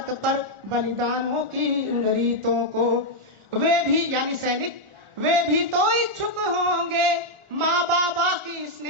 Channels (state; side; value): late; left; 1.4 ms